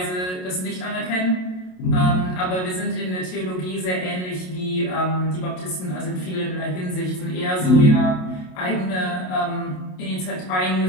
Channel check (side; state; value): right; late; 27 ms